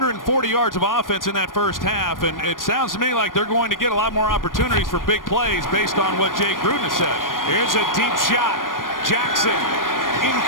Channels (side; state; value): right; late; 0.90 ms